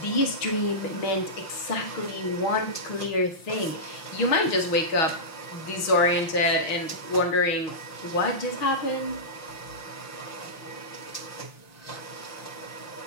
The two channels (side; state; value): right; late; 6.3 ms